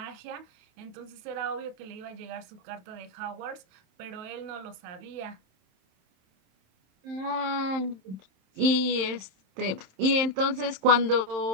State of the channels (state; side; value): late; left; 27 ms